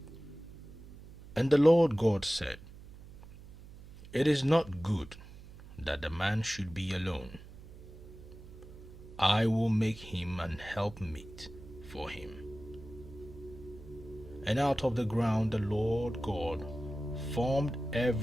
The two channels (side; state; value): right; noise; hum, 17 dB below the sound